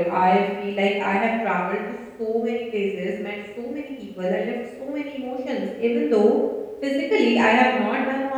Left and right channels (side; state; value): both; identical; correlation 1.00